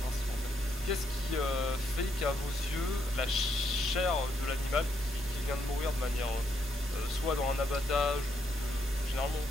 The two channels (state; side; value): normal; both; correlation 0.76